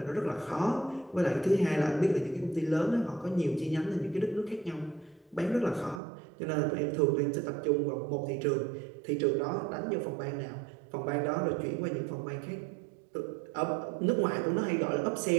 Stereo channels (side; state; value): left; drops out; at 6.0 s